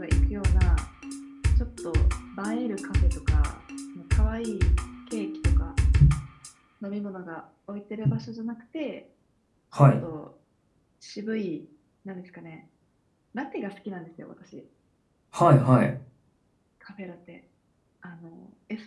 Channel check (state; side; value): identical; both; correlation 1.00